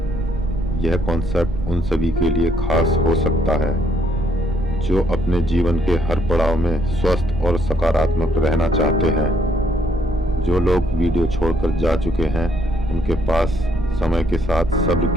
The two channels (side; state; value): right; noise; rumble, 8 dB below the sound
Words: यह कॉन्सेप्ट उन सभी के लिए खास हो सकता है जो अपने जीवन के हर पड़ाव में स्वस्थ और सकारात्मक रहना चाहते हैं। जो लोग वीडियो छोड़कर जा चुके हैं, उनके पास समय के साथ सब्र